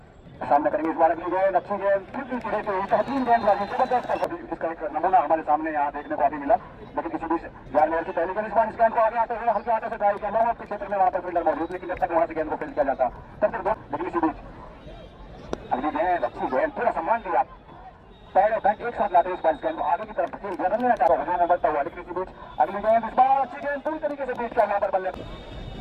सामने करेंगे। इस बार अगली गेंद अच्छी गेंद फिर भी रहती हुई 3 गेंदबाजी जबरदस्त, इसका एक नमूना हमारे सामने यहाँ देखने को अभी मिला, लेकिन किसी भी यार की पहली गेंद इस बार इस गेंद को आगे आते हुए हल्के हाथों से ड्राइव किया लोगों के क्षेत्र में, वहां पर फील्डर मौजूद, लेकिन जब तक वहां से गेंद को फील्ड किया जाता तब तक लेकिन इसी बीच अगली गेंद अच्छी गेंद पूरा सम्मान दिया, पैर और बैट एक साथ लाते इस बार इस गेंद को आगे की तरफ रन लेना चाह रहा है बढ़ता हुआ, लेकिन इसी बीच अगली गेंद इस बार अच्छी गेंद पूरी तरीके से बीच का यहाँ पर बल्ले।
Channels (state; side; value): identical; both; correlation 1.00